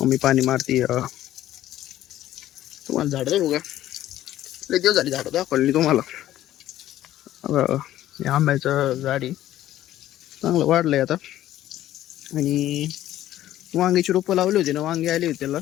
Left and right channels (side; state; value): right; quieter; 13.4 dB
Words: पाणी मारती. तुम्हाला झाड दाखवू का. लय दिवस झाली झाडं दाखवली तुम्हाला. हे आंब्याचं झाडी चांगलं वाढलंय आता. आणि वांग्याची रोपं लावली होती ना, वांगे आली होती त्याला.